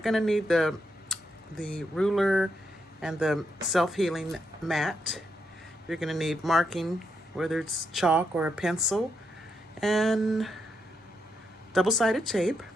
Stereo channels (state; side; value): normal; both; correlation 0.82